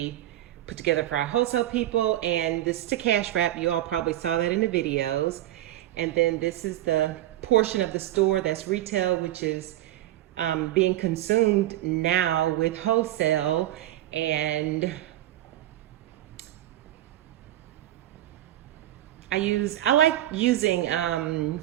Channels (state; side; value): quieter; left; 14.2 dB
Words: put together for our wholesale people, and this is the cash wrap. You all probably saw that in the videos. And then this is the portion of the store that's retail, which is being consumed now with wholesale. And I like using